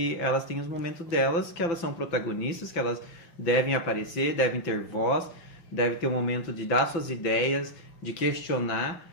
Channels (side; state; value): right; late; 5.9 ms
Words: elas têm os momentos delas, que elas são protagonistas, que elas devem aparecer, devem ter voz, devem ter um momento de dar suas ideias, de questionar